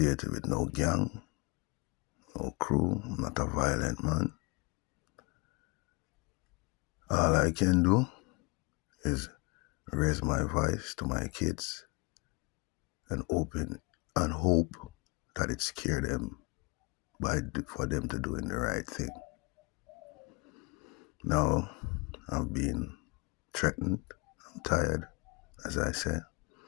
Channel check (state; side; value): quieter; right; 27.6 dB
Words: with no gang, no crew. I'm not a violent man. All I can do is raise my voice to my kids and open and hope that it scare them for them to doing the right thing. Now, I'm being threatened. I'm tired, as I said.